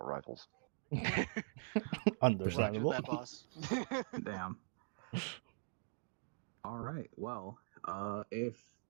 rifles. Understandable. That, boss. Damn. All right. Well, if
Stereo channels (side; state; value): left; silent; digital silence